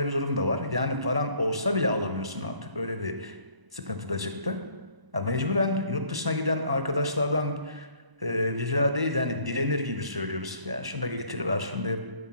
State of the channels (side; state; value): left; late; 1.0 ms